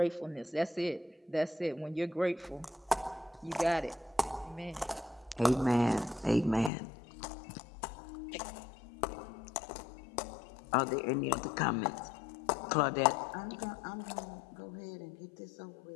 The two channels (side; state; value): right; drops out; at 6.7 s